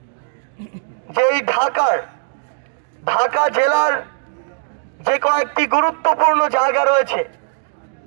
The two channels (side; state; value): left; silent; digital silence